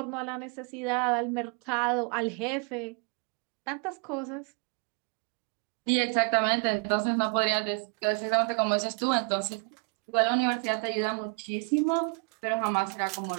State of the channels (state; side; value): quieter; left; 35.1 dB